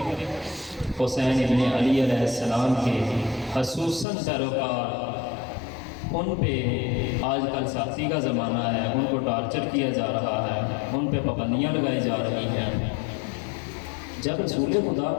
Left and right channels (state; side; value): drops out; right; at 4.0 s